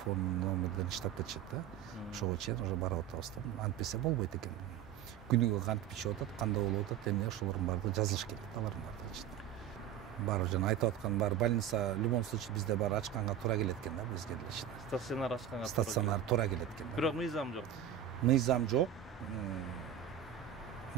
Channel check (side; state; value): left; quieter; 9.8 dB